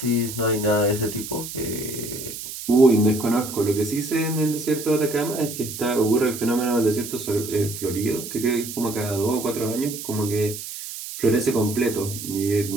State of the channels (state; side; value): noise; right; hiss, 9 dB below the sound